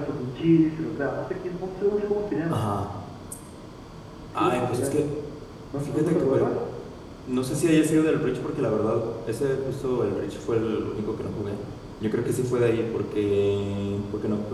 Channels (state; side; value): identical; both; correlation 1.00